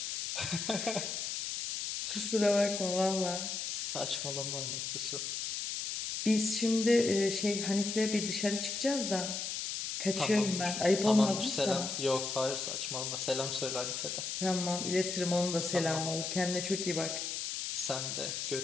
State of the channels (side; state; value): left; noise; hiss, 3 dB below the sound